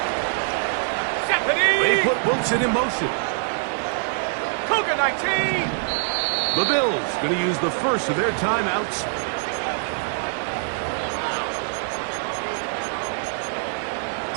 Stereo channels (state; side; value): silent; left; 58 dB below the other